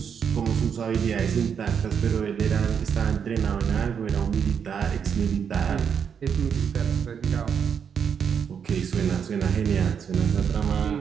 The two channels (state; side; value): quieter; left; 7.3 dB